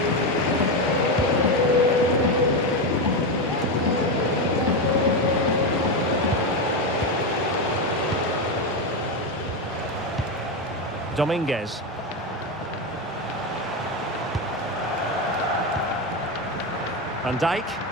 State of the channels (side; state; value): both; normal; correlation 0.12